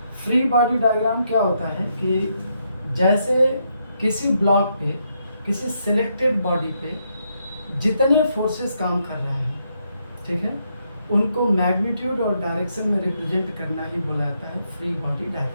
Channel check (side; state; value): both; inverted; correlation -0.78